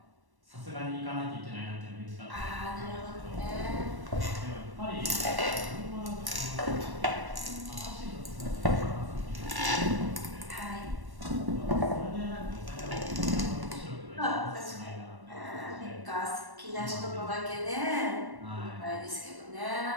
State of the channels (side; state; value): left; late; 1.1 ms